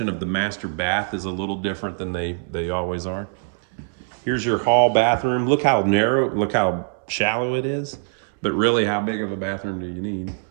of the master bath is a little different than they always are. Here's your hall bathroom. Look how narrow, look how shallow it is. But really, how big of a bathroom do you need?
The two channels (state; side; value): silent; left; 63 dB below the other